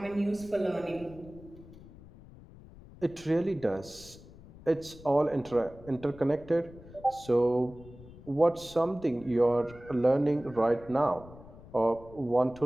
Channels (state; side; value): noise; left; rumble, 19 dB below the sound